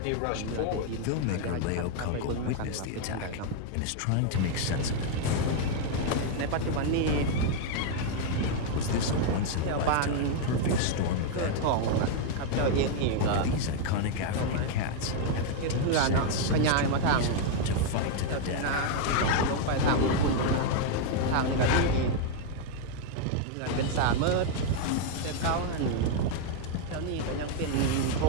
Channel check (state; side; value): different; both; correlation 0.00